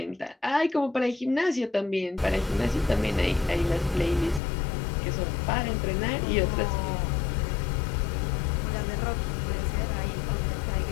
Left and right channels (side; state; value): right; drops out; at 4.4 s